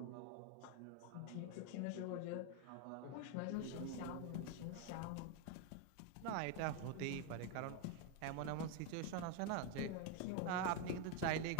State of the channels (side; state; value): both; different; correlation 0.01